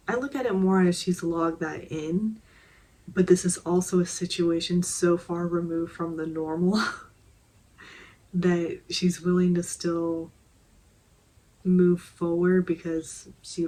I look at it more as she's logged that in, but this is also a situation so far removed from the normal that she's willing to still move forward because she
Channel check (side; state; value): both; identical; correlation 1.00